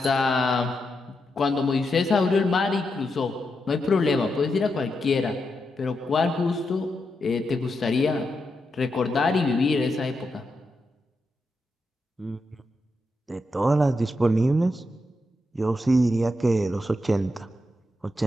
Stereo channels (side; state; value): both; normal; correlation 0.85